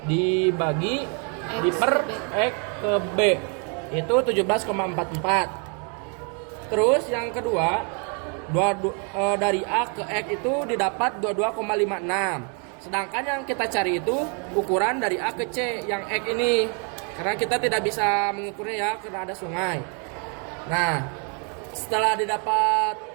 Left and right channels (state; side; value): quieter; left; 38.2 dB